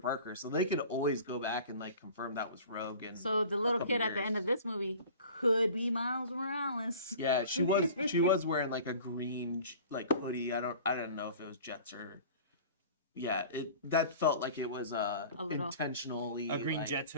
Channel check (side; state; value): both; inverted; correlation -0.43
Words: so they could always go back and like confirm that was Rogue. And So the little couple kid at the years. end of this movie could be Miles Morales. yeah, she was wearing like a green like hoodie. I don't know if it was Jets or that felt like it was little- intentionally A green like, Jets